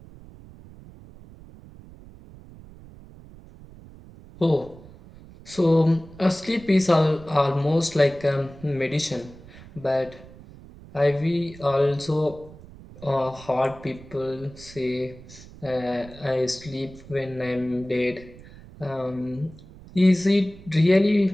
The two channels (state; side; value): noise; right; rumble, 19 dB below the sound